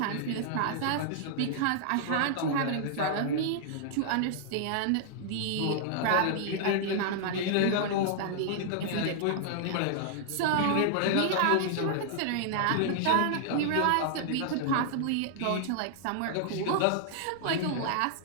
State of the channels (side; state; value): both; different; correlation -0.01